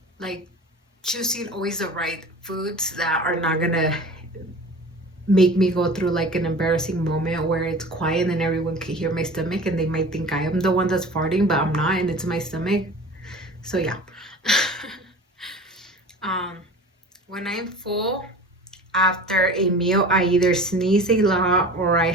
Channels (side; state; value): both; normal; correlation 0.39